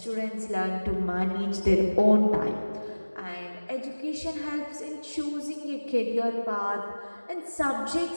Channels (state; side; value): inverted; both; correlation -1.00